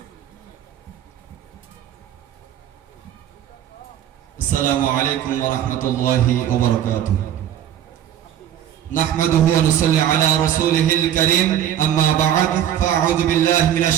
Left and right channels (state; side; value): quieter; left; 10.7 dB